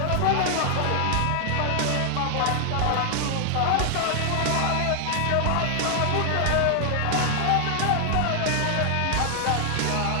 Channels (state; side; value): different; both; correlation 0.00